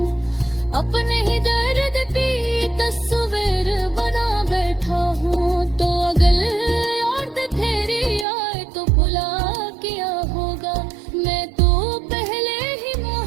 अपने ही दर्द की तस्वीर बना बैठा हूँ। तो अगर और तेरी आए तो भुला किया होगा, मैं तो पहले ही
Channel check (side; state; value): left; drops out; at 8.2 s